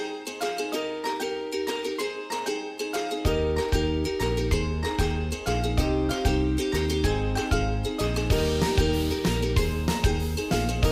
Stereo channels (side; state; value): both; identical; correlation 1.00